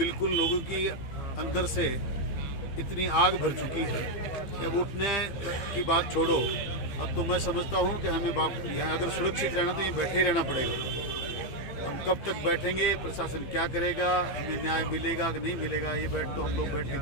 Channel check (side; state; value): right; late; 15 ms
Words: लोगों की अंदर से इतनी आग भर चुकी है कि अब उठने की बात छोड़ो। अब तो मैं समझता हूँ कि हमें यहाँ अगर सुरक्षित रहना तो ये बैठे ही रहना पड़ेगा। हम कब तक बैठेंगे, प्रशासन क्या करेगा, हमें न्याय मिलेगा कि नहीं मिलेगा, ये तो हम लोग बैठ के